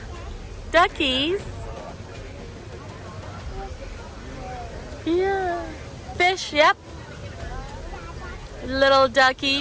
Duckies? Yeah. Fish, yep. Little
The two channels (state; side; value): identical; both; correlation 1.00